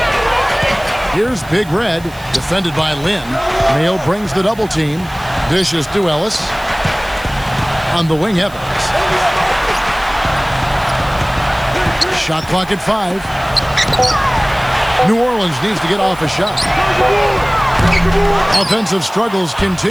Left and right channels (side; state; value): right; noise; hiss, 22 dB below the sound